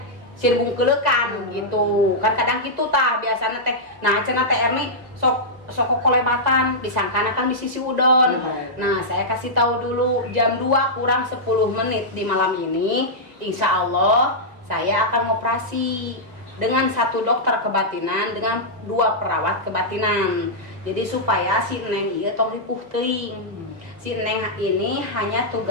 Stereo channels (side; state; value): left; late; 1.9 ms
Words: sirbung kelekan gitu kan kadang gitu tah biasanya teh. Nah cenah teh Erni sok kolebatan disangkana kan di sisi udon. Nah saya kasih tahu dulu jam 2 kurang 10 menit di malam ini insya Allah saya akan operasi dengan 1 dokter kebatinan dengan 2 perawat kebatinan. Jadi supaya si Neng ieu tong ripuh teuing. Si Neng ini hanya